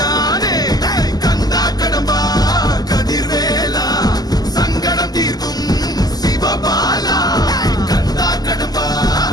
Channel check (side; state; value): right; late; 0.19 ms